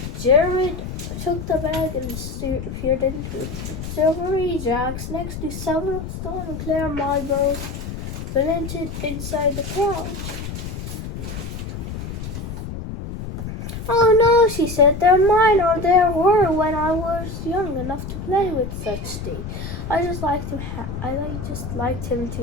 Jared took the bag and peered into it. Silvery jacks next to several stone and clear marbles blended inside the pouch. Oh no, she said, they're mine, or there were when I was young enough to play with such things. I just liked him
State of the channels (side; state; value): left; noise; rumble, 7 dB below the sound